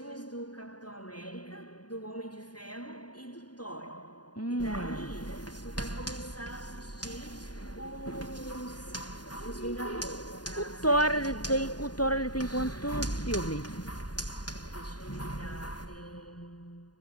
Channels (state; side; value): late; right; 0.70 ms